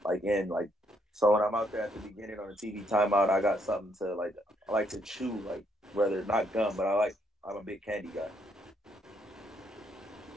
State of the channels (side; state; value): both; normal; correlation 0.72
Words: like in, like, so when I'm out there at the beginning on the TV timeout, I got something to like, I like to chew, like, whether not gum, but I'm a big candy guy.